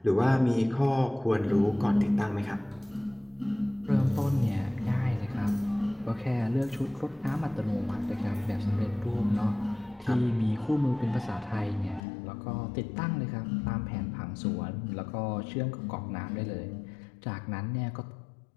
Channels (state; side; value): drops out; right; at 12.0 s